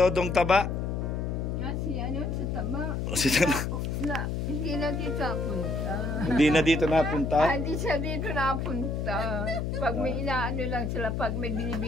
Taba? Si ano, sa Taba. Si Taba? Hindi na dito napunta. Hindi na dito napunta? Hindi siya dito napunta. Pag may inaano lang sila, pag may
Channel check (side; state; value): left; noise; hum, 2 dB below the sound